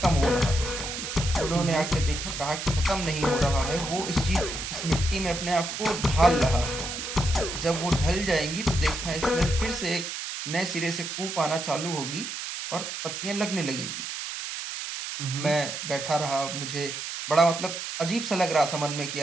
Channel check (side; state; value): right; noise; hiss, 6 dB below the sound